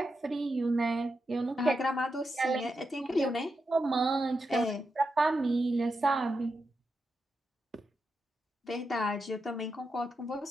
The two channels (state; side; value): normal; both; correlation 0.87